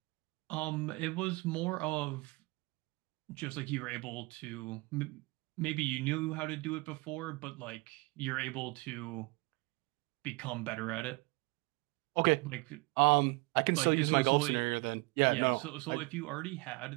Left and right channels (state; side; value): quieter; left; 25.4 dB